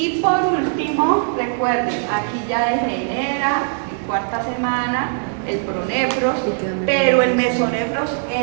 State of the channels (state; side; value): silent; left; 66 dB below the other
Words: por último, recuerden, aquí ya degenera en cuarta semana el pronefros, pero el mesonefros